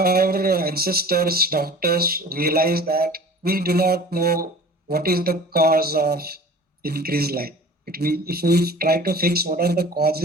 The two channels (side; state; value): both; normal; correlation 0.42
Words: ancestors, doctors realized that we do not know what is the cause of increased life. If we try to fix what are the